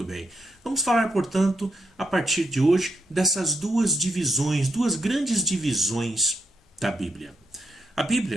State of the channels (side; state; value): both; normal; correlation 0.81